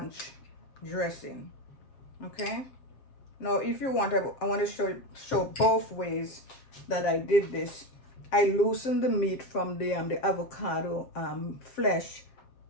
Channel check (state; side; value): late; right; 7.6 ms